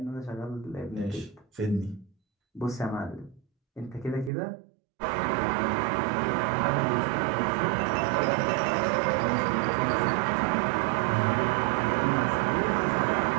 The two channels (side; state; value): left; drops out; at 4.3 s